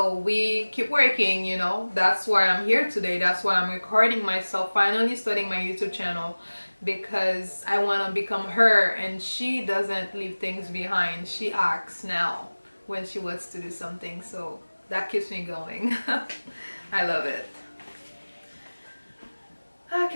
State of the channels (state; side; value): inverted; both; correlation -1.00